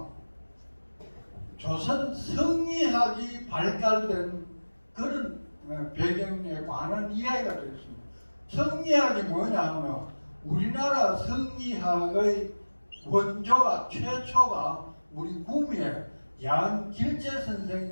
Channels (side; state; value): both; inverted; correlation -1.00